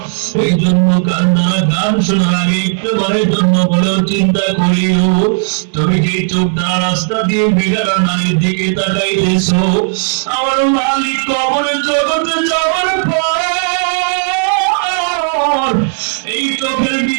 এই জন্য গান শোনার আগে একবারের জন্য বলেও চিন্তা করিও, তুমি যে চোখ দ্বারা রাস্তা দিয়ে বেগারা নারীর দিকে তাকাইতেছো, আমার মালিক কবরের জগতে যাওয়ার পর এই চোখের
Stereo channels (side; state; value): left; silent; digital silence